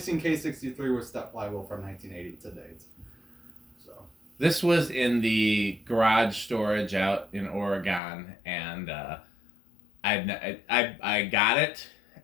K-63 with step flywheel from 1980 to date. So this was in the garage storage out in Oregon, and I got it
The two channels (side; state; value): right; drops out; at 8.0 s